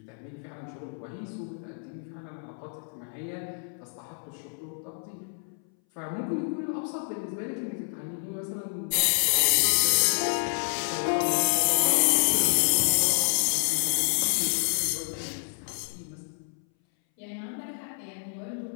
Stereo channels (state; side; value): silent; right; 59 dB below the other